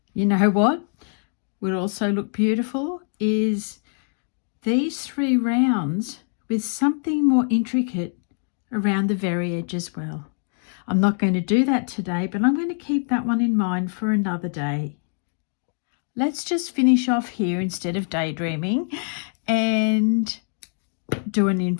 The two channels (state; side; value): silent; right; 60 dB below the other